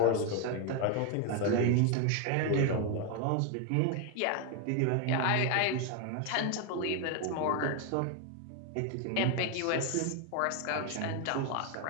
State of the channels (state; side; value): different; both; correlation 0.01